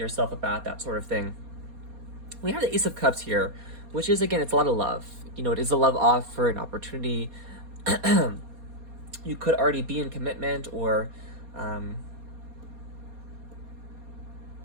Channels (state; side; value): late; left; 4.2 ms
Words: about that sort of thing. We have the Ace of Cups here, which is, again, it's a lot of love. It is a love offer, an opportunity. You could already be in commitment, or it